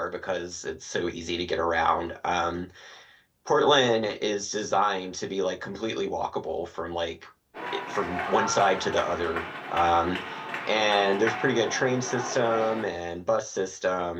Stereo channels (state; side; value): identical; both; correlation 1.00